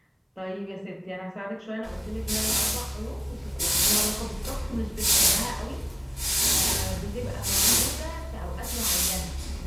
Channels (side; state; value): both; identical; correlation 1.00